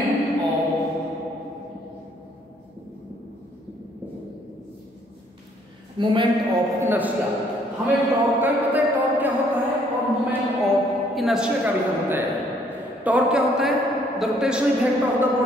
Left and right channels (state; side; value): normal; both; correlation 0.65